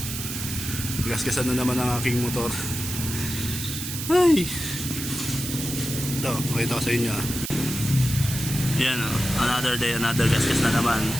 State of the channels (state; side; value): noise; right; hiss, 6 dB below the sound